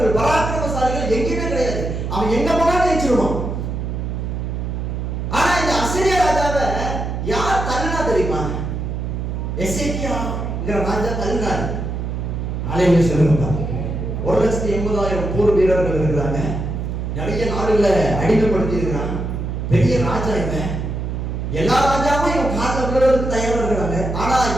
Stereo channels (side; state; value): right; noise; hum, 3 dB below the sound